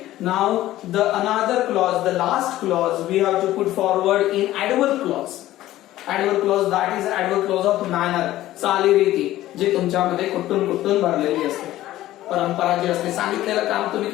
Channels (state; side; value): quieter; right; 14.9 dB